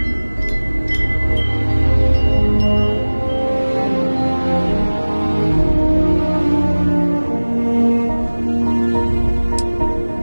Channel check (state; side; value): inverted; both; correlation -1.00